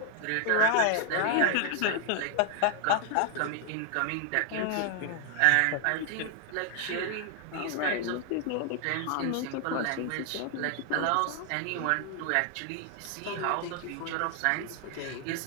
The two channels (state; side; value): different; both; correlation 0.00